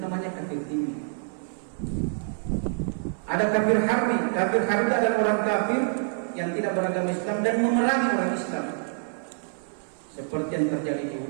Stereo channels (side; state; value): left; silent; 60 dB below the other